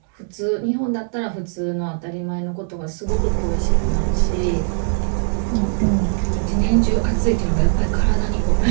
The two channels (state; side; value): silent; left; digital silence